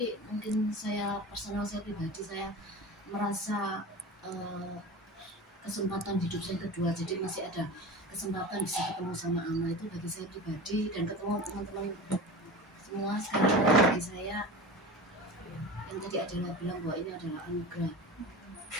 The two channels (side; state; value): both; normal; correlation 0.31